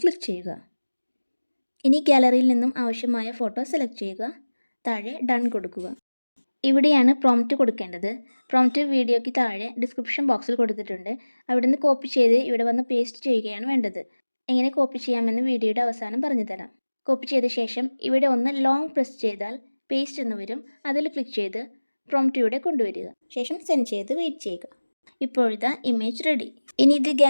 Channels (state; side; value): inverted; both; correlation -1.00